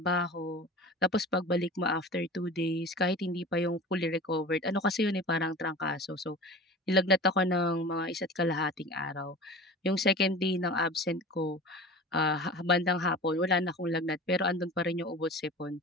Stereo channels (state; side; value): normal; both; correlation 0.36